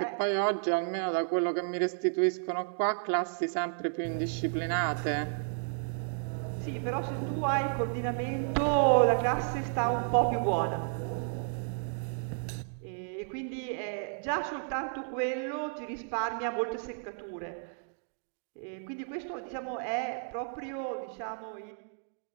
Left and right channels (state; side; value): silent; left; digital silence